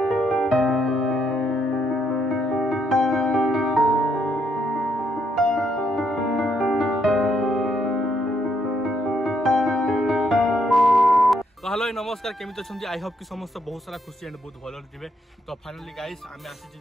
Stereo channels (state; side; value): normal; both; correlation 0.74